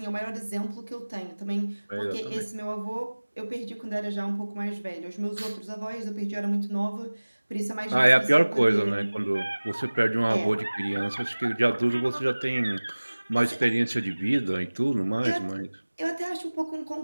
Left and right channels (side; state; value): both; inverted; correlation -1.00